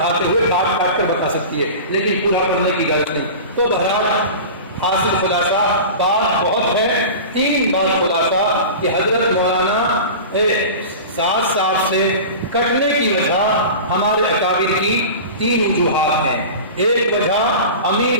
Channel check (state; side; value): inverted; both; correlation -0.33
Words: ہوئے کاٹ کر بتا سکتی ہے، لیکن پورا پڑھنے کی اجازت نہیں۔ تو بہرحال حاصل خلاصہ بات بہت ہے، 3 بات خلاصہ کہ حضرت مولانا سعد صاحب سے کٹنے کی وجہ ہمارے اکابر کی 3 وجوہات ہیں۔ ایک وجہ امیر